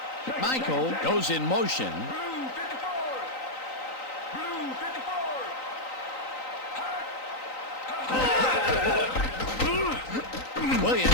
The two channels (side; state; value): right; late; 3.9 ms